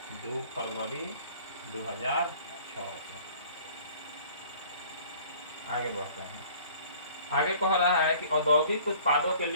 2006 से। आगे बढ़ते हैं, आगे कह रहा है कि औद्योगिक उत्पादों के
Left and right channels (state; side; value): inverted; both; correlation -0.51